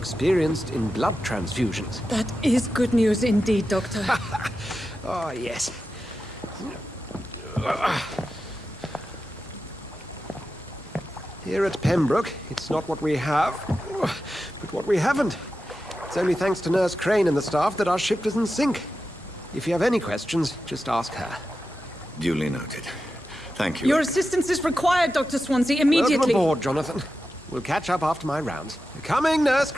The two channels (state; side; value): normal; both; correlation 0.91